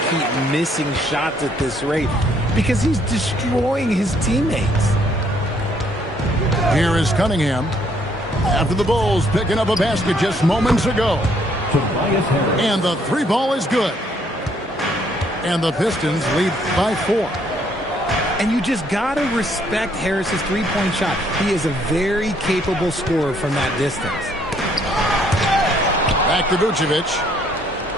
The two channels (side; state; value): both; normal; correlation 0.67